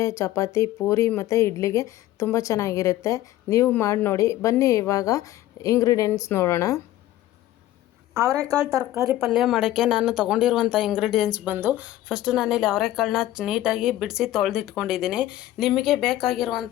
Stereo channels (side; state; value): right; quieter; 14.5 dB